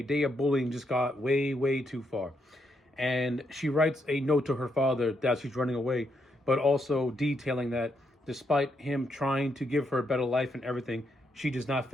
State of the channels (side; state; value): both; normal; correlation 0.78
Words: day of bullying just got way too far. And she writes a note to her father that she's running away, but also detailing that despite him trying to give her a better life and everything, she does not